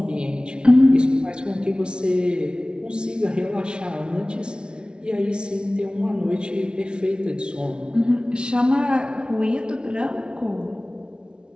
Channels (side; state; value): left; late; 0.056 ms